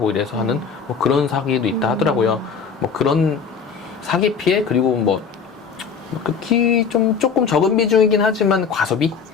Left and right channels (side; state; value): right; quieter; 6.0 dB